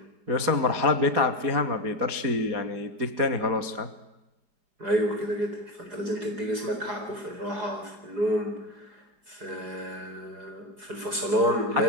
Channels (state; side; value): late; left; 4.9 ms